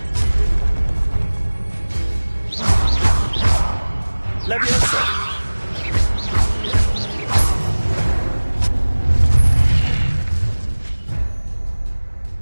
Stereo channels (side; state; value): both; inverted; correlation -1.00